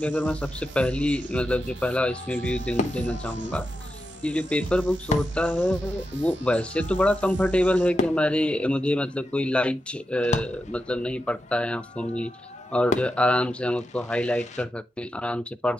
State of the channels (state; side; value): normal; both; correlation 0.88